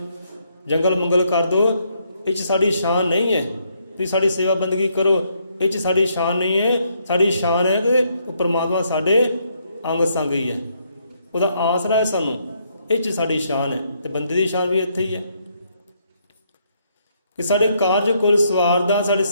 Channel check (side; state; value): both; inverted; correlation -0.73